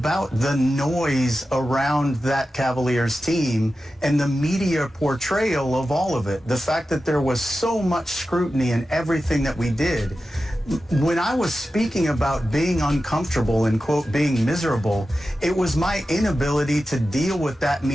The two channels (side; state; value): both; normal; correlation 0.93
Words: the noise around that Cavaliers team and the media portrayal of all of it. The fact that there was so much scrutiny in everything that we did. When I was speaking about being uncomfortable and, quote, being miserable, it was my inability to deal with that